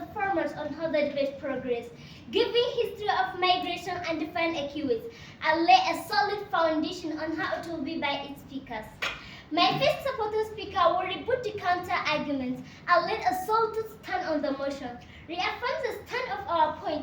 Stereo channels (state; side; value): identical; both; correlation 1.00